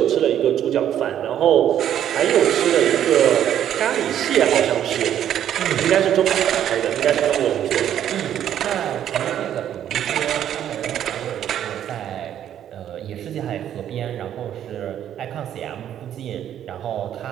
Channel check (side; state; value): left; quieter; 10.5 dB